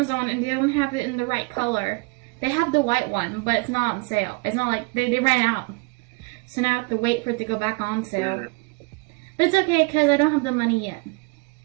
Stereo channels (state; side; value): quieter; left; 29.1 dB